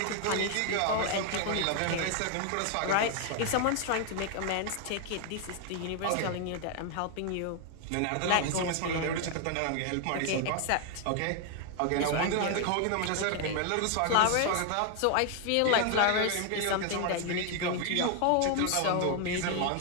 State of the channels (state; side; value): different; both; correlation 0.00